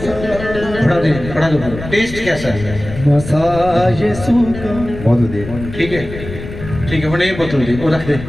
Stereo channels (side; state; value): left; noise; rumble, 11 dB below the sound